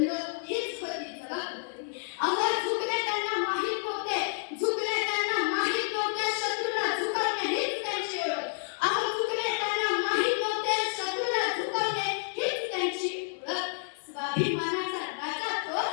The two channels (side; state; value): right; silent; 58 dB below the other